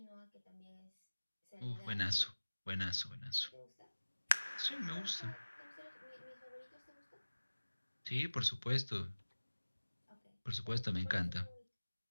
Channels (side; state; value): both; inverted; correlation -1.00